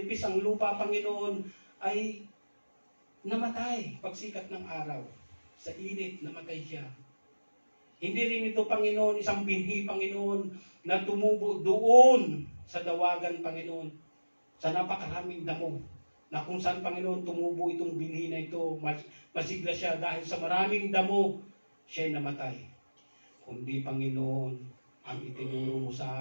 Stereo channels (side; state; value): both; inverted; correlation -1.00